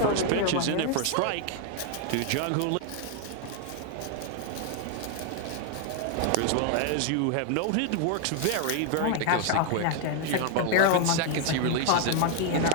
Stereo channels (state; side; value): different; both; correlation 0.00